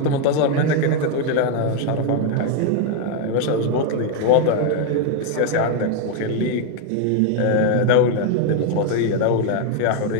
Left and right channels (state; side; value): different; both; correlation 0.01